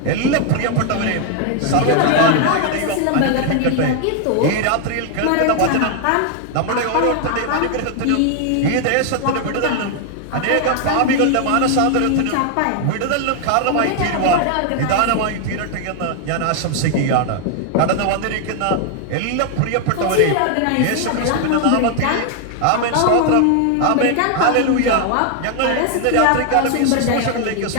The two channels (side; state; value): both; different; correlation 0.00